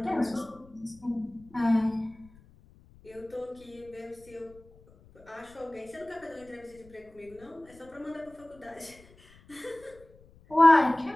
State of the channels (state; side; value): noise; left; rumble, 26 dB below the sound